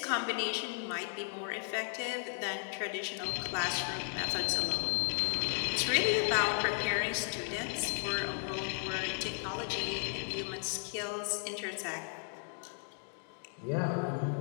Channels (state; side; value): silent; right; 54 dB below the other